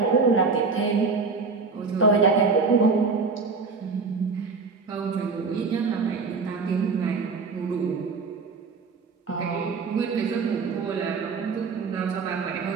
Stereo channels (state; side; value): quieter; left; 4.6 dB